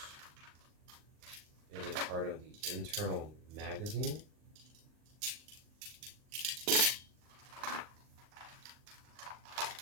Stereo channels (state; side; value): late; left; 39 ms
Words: is a part of the internal magazine.